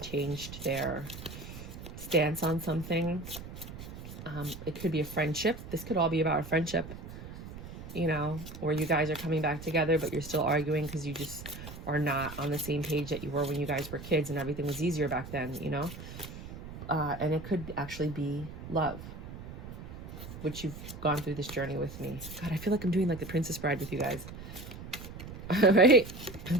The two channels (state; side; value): noise; right; rumble, 12 dB below the sound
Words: changed their stance on something. It could be a friendship. This could all be about a friendship. You know, where you guys are coming back together, but you're still arguing because you just are not on the same page that you were when you guys were kids and everything was easier back then, you know? And it could actually be love, which you've gone through this journey with me. God, I feel like I'm doing like the Princess Bride with you guys. Right?